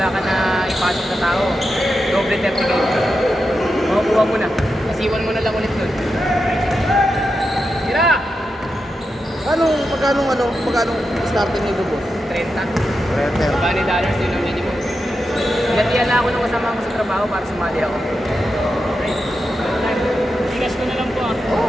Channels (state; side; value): normal; both; correlation 0.88